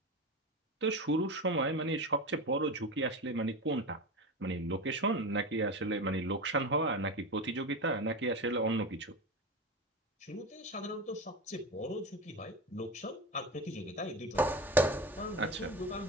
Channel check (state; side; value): normal; both; correlation 0.24